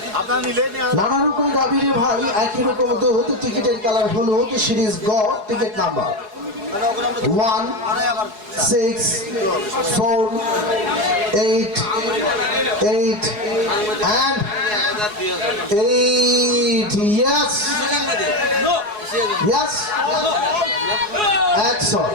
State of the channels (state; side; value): late; left; 4.7 ms